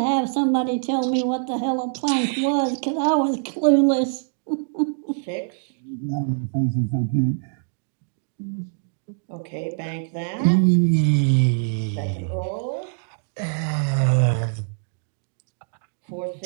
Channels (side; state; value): left; silent; digital silence